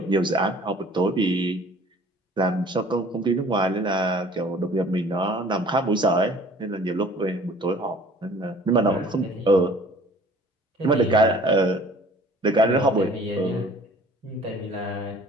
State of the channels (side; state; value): both; normal; correlation 0.51